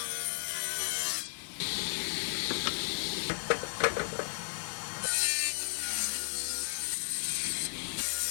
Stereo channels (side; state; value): right; silent; digital silence